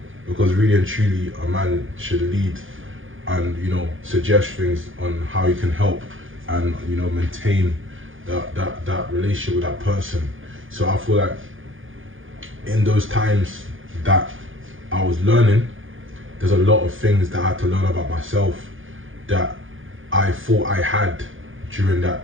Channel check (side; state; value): left; late; 0.58 ms